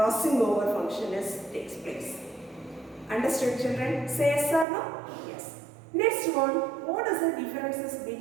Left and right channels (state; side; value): drops out; left; at 4.7 s